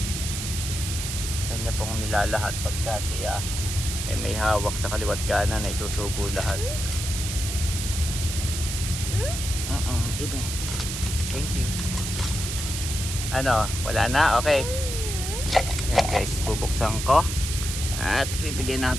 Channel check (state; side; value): noise; right; hiss, 5 dB below the sound